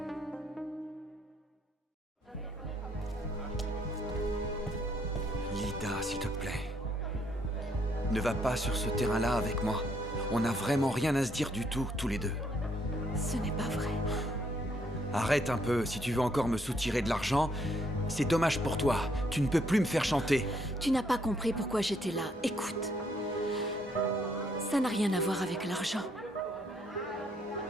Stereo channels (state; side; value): normal; both; correlation 0.70